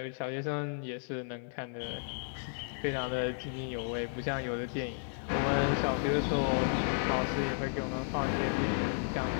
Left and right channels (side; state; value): right; silent; digital silence